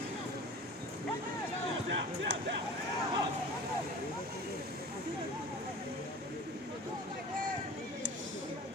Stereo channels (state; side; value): normal; both; correlation 0.39